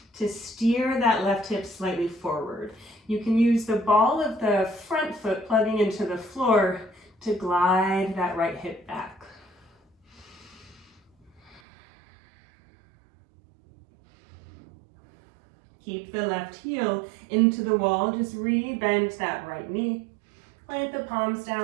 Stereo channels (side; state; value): left; drops out; at 11.6 s